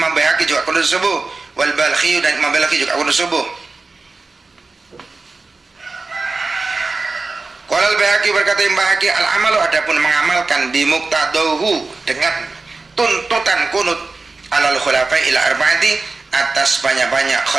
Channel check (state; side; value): quieter; left; 3.8 dB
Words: Baihaqi juga kunut subuh. Wal Balkhi dan Imam Balkhi juga kunut subuh. Qala Al-Baihaqi berkata Imam Baihaqi al-amalu adapun mengamalkan bimuqtadahu dengan tuntutan kunut alal khulafai ila arba'ati atas banyak-banyak